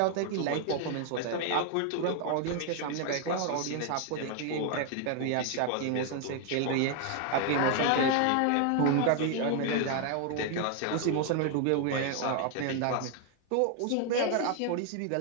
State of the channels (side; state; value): both; different; correlation 0.00